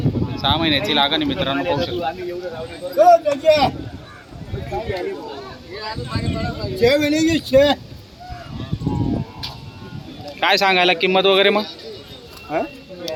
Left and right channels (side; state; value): both; identical; correlation 1.00